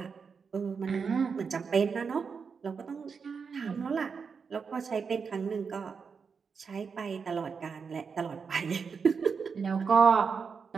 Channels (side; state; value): left; quieter; 5.7 dB